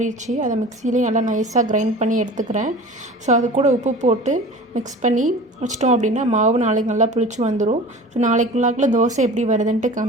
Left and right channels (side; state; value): both; normal; correlation 0.39